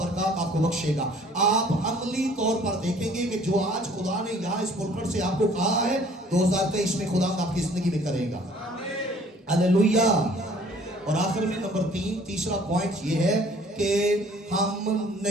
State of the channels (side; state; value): both; normal; correlation 0.55